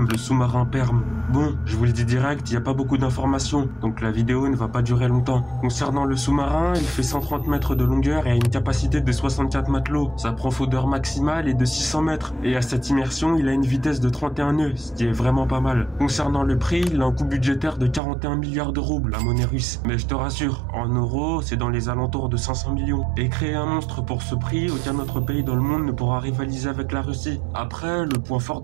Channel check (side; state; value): left; drops out; at 18.0 s